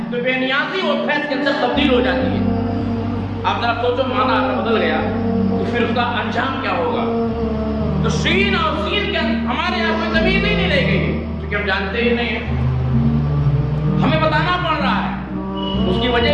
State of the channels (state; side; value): identical; both; correlation 1.00